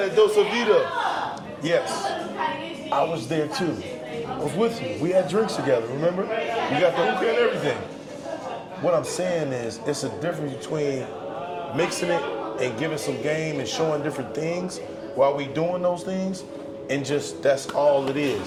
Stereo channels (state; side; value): identical; both; correlation 1.00